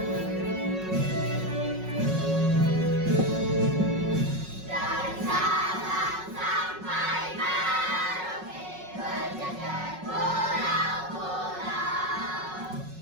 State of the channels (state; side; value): late; left; 5.4 ms